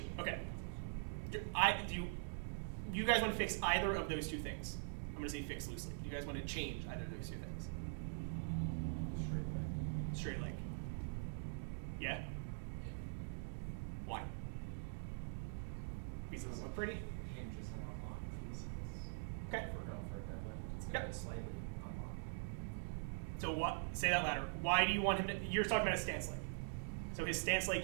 Okay. You guys want to fix either of those two things? I'm going to say fix loosely. Do you guys want to change either of those two things? Straight leg. Straight leg. Yeah? Yeah. Why? Because it doesn't look pretty? Hinges and unlock knees. Okay. If we're going for a deadlift, it's going to Yep. be slightly unlocked. So say that louder. Why do you want him to, you're talking about a stance leg. So his stance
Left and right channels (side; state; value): left; silent; digital silence